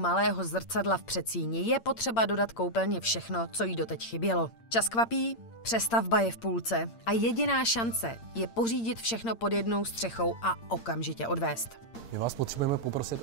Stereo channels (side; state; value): right; late; 8.8 ms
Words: zrcadla v předsíni, je potřeba dodat koupelně všechno, co jí doteď chybělo. Čas kvapí, přestavba je v půlce a jediná šance je pořídit všechno pod jednou střechou a okamžitě odvést. My vás potřebujeme poprosit